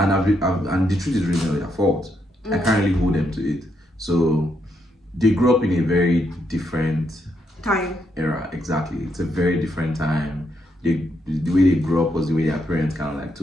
and the truth is really not their fault. I can't really hold them to it. So they grew up in a very different time era. Exactly, it's a very different time. The way they grew up was the way their parents kind of like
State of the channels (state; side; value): normal; both; correlation 0.78